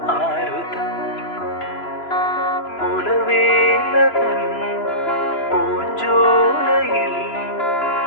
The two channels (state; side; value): late; right; 3.0 ms